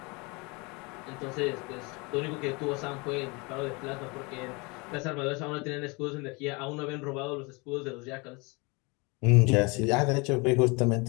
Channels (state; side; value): quieter; right; 28.0 dB